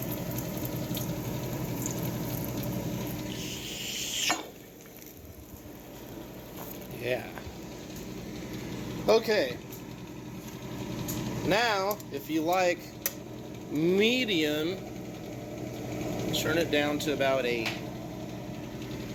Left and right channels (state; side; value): identical; both; correlation 1.00